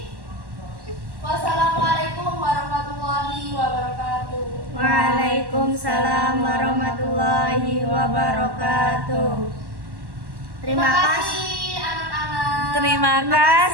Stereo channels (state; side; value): late; left; 1.1 ms